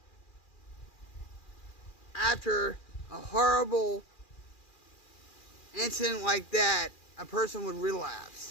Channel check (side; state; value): right; late; 2.4 ms